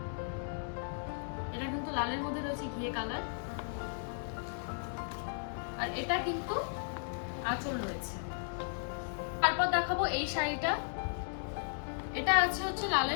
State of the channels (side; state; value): right; silent; digital silence